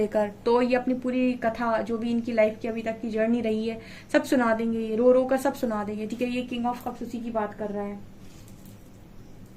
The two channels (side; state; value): both; identical; correlation 1.00